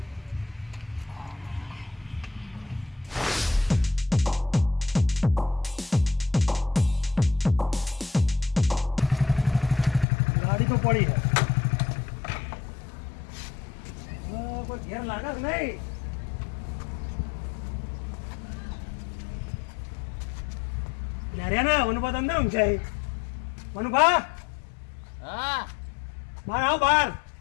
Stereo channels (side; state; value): right; drops out; at 10.1 s